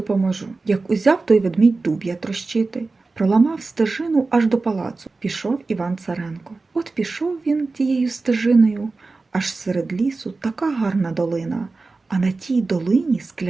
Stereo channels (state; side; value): quieter; left; 3.7 dB